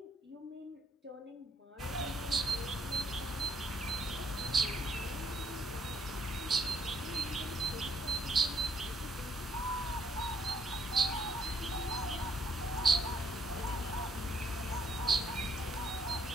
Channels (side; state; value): both; normal; correlation 0.68